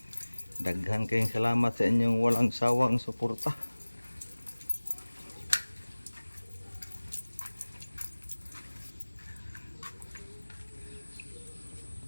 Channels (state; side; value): inverted; both; correlation -1.00